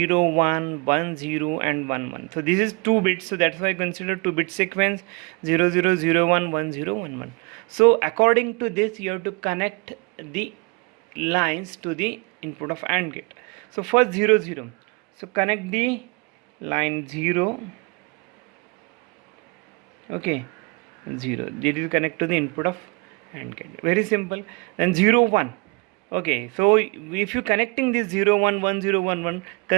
1 1 0 and 1 1. So this is 2 bits, so that's why I consider 2-bit sequence 0 0 0 1 1 0 1 1. So according to this, you have to connect the lines to the input of AND gate. So first 0 0, so connect the line 0. Okay, 0, this will connect to the input of AND gate, very simple. Then 0 1. Okay, so if you connecting this 0 1 1 0 1 1,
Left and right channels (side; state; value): left; quieter; 30.0 dB